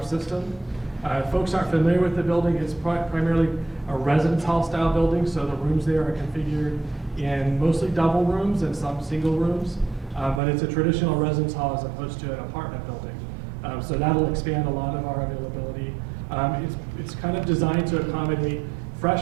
system. Folks aren't familiar with the building. It's primarily a residence hall style building, so the rooms there are configured in mostly double rooms and some single rooms, but it's a traditional residence hall as opposed to an apartment building. So that'll expand a lot of our availability. It's kind of designed to accommodate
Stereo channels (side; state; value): left; drops out; at 10.4 s